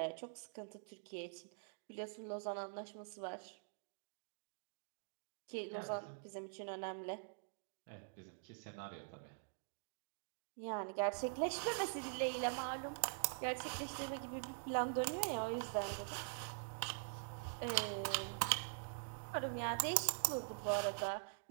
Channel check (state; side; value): silent; left; digital silence